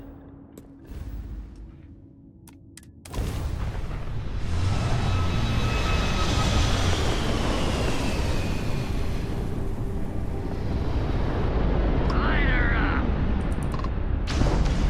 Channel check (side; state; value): both; identical; correlation 1.00